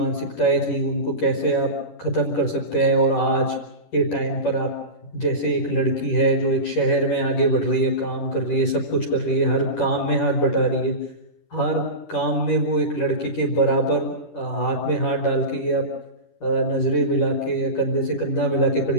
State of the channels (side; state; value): right; late; 10 ms